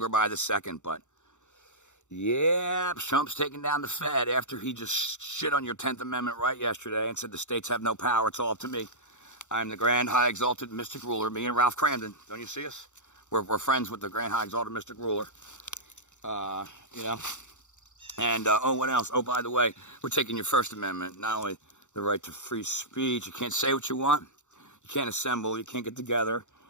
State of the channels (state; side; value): late; right; 0.84 ms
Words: by the second. But yeah, Trump's taking down the Fed after he just shit on your 10th Amendment right yesterday and said the states have no power, it's all up to me. I'm the grand, high, exalted, mystic ruler, me and Ralph Cramden. Don't you see us? We're friends with the grand, high, exalted, mystic ruler. You know. And, oh, what else? Oh, by the way, we're taking your First Amendment, not only the right to free speech, you can't say what you want, you can't assemble, you can't get together